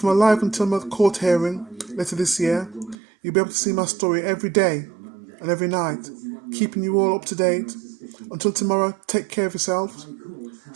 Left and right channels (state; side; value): drops out; left; at 3.0 s